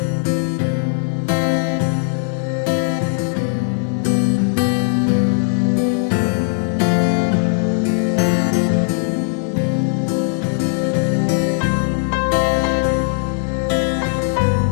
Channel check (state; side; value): silent; right; digital silence